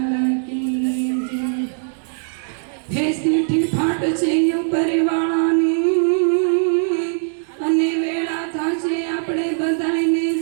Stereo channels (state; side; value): silent; left; 65 dB below the other